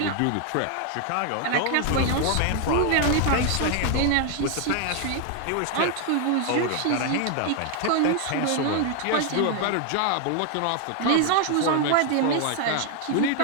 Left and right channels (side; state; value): both; different; correlation 0.00